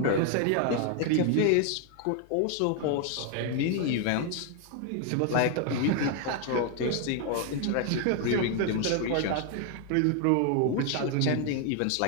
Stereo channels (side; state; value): both; different; correlation 0.00